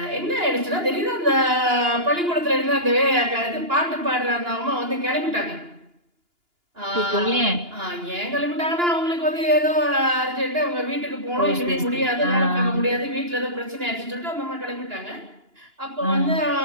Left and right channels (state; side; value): late; left; 2.9 ms